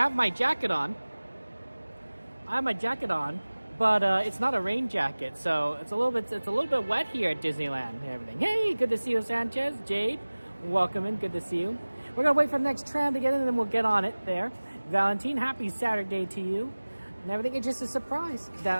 my jacket on. But it's not a rain jacket, so it's a little bit wet here at Disneyland and everything. Hey, good to see you, Sanchez. Jade, welcome in. Good to see you. We're gonna wait for the next tram to get in, and then we'll get on it there. Valentine, happy Saturday to you. And everything, it's just a surprise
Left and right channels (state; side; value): inverted; both; correlation -1.00